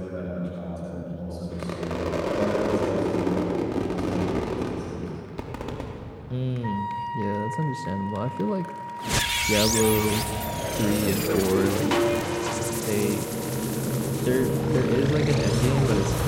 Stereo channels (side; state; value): both; identical; correlation 1.00